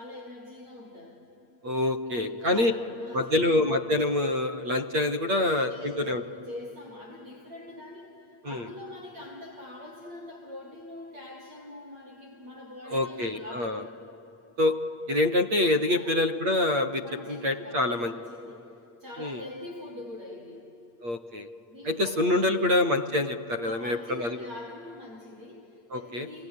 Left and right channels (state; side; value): late; left; 8.6 ms